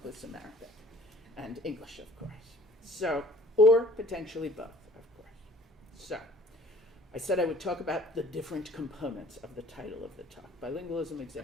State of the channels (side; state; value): both; normal; correlation 0.52